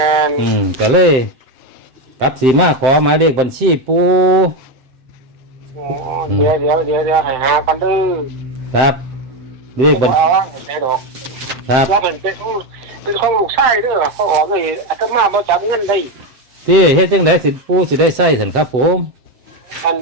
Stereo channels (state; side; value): late; left; 7.7 ms